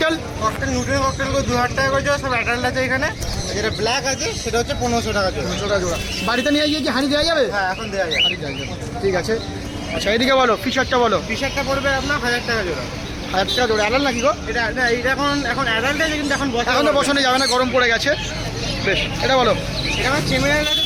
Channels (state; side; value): identical; both; correlation 1.00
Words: ককটেল নিউট্রিন ককটেলগুলো 2000 টাকা করে জোড়া, সব অ্যাডাল্ট আছে এখানে। যেটা ব্ল্যাক আছে সেটা হচ্ছে 1500 টাকা জোড়া। 300 টাকা জোড়া। বাড়িতে নিয়ে গিয়ে কি হানি দেওয়া যাবে? হ্যাঁ, এখন দেওয়া যায়। হানি দেওয়া যাবে, ঠিক আছে। আচ্ছা এদিকে বলো, ফিশারটা বলো। টি-শার্টটা পড়বে আপনার 1000 টাকা জোড়া। 1000 টাকা জোড়া। অ্যাডাল নাকি গো? এটা না, এটা এখন অ্যাডাল্ট আছে কিন্তু এখন বসা এখন তো বসানো যাবে না, গরম পড়ে গেছে। বেশ, এটা বলো। এটা আমার চেমিনার আছে,